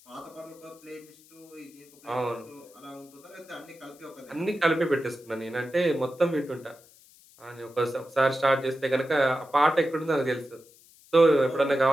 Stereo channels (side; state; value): left; noise; hiss, 26 dB below the sound